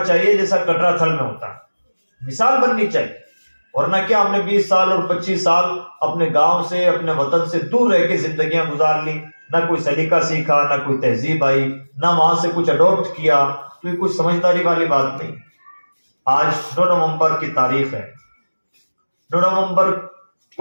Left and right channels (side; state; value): both; inverted; correlation -1.00